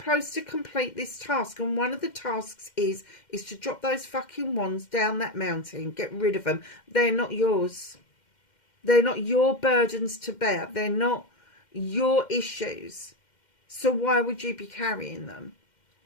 to complete this task, and one of the tasks is to drop those fucking wands down that mountain. Get rid of them. They're not yours. They're not your burdens to bear. They're not your issues. So why would you be carrying them?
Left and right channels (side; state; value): right; late; 2.1 ms